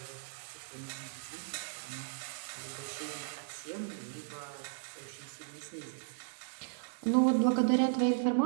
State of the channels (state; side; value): silent; left; digital silence